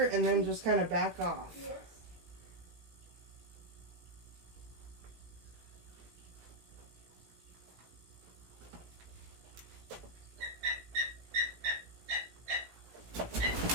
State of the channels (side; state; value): left; late; 17 ms